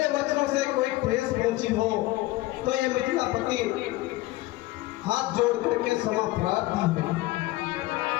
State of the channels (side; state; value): right; quieter; 18.3 dB